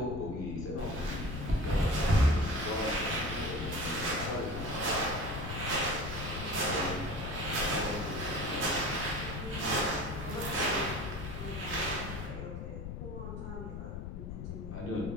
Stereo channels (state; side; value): noise; left; rumble, 6 dB below the sound